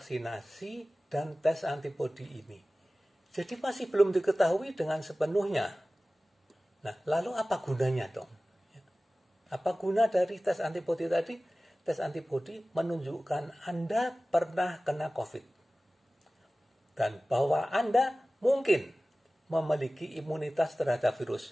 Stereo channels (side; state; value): both; normal; correlation 0.97